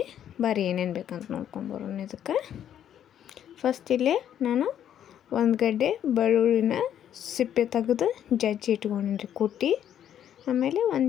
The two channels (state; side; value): quieter; right; 10.1 dB